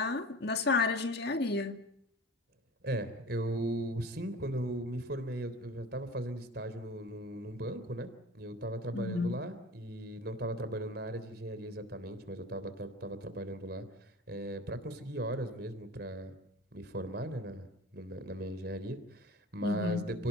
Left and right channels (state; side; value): normal; both; correlation 0.38